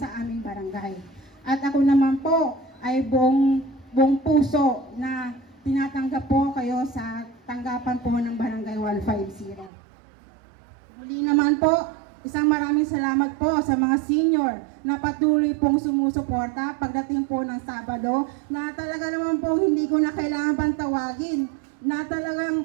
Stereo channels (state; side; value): drops out; left; at 9.7 s